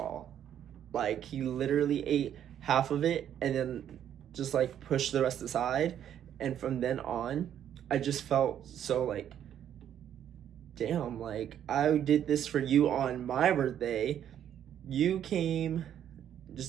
Like, he literally ate half of it and then just like pushed the rest aside. And from then on, I just felt so like, damn, like I did this for you on my birthday. You came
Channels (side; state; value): left; quieter; 10.0 dB